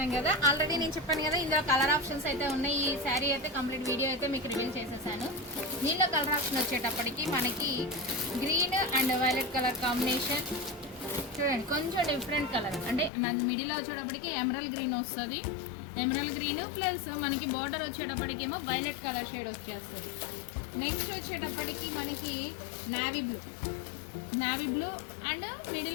కదా. ఆల్రెడీ నేను చెప్పాను కదా, ఇందులో కలర్ ఆప్షన్స్ అయితే ఉన్నాయి. ఈ శారీ అయితే కంప్లీట్ వీడియో అయితే మీకు రివీల్ చేసేసాను. దీనిలో కలర్ ఆప్షన్ వచ్చేటప్పటికి మనకి green and violet colour combination చూడండి. కొంచెం డిఫరెంట్ కలర్ అంటే మిడిల్లో వచ్చేటప్పటికి ఎమరల్ గ్రీన్ వస్తుంది. ఎమరల్ గ్రీన్ ప్లస్ మనకి బోర్డర్ వచ్చేటప్పటికి ఏమో వైలెట్ కలర్ షేడ్ వచ్చేస్తుంది. నెక్స్ట్ వచ్చేటప్పటికి మనకి నావీ బ్లూ అండ్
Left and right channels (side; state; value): right; drops out; at 13.1 s